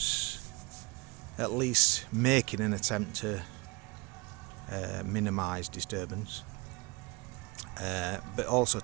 at least making an attempt to minimise disturbance. But also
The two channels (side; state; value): left; quieter; 26.0 dB